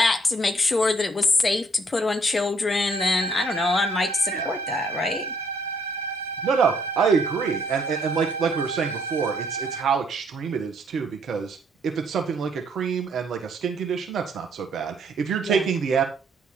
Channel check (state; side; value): normal; both; correlation 0.66